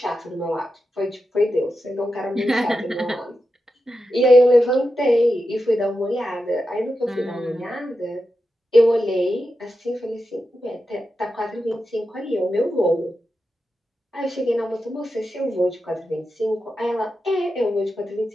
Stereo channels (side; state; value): both; normal; correlation 0.89